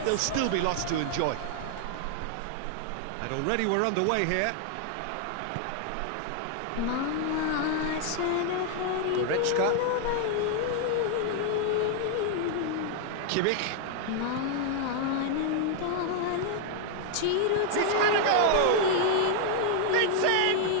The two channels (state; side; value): different; both; correlation 0.00